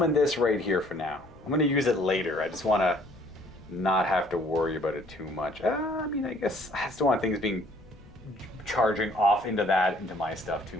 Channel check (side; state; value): left; noise; rumble, 23 dB below the sound